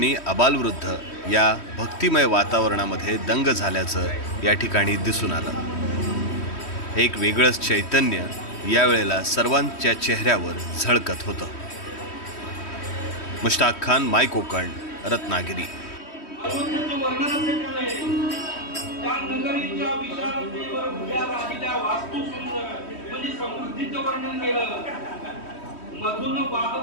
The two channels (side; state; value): right; late; 3.1 ms